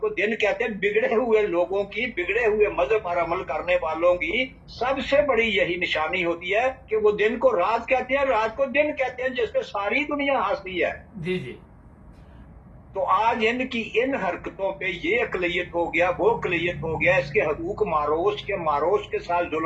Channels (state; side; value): identical; both; correlation 1.00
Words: دن کہتے ہیں. بگڑے ہوئے لوگوں کی، بگڑے ہوئے مذہب پر عمل کرنے والوں کی سب سے بڑی یہی نشانی ہوتی ہے کہ وہ دن کو رات کہتے ہیں، رات کو دن کہتے ہیں، جس سے ساری دنیا ہنستی ہے. جی جی تو آج ان کی ان حرکتوں پہ یہ اقلیت ہو گیا، وہ اقلیت ہو گیا، اس کے حقوق مارو، اس کے مارو، اس کے ساتھ